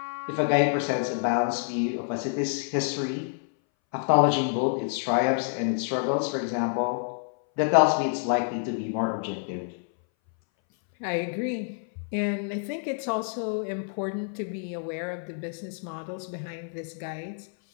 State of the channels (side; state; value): right; silent; 59 dB below the other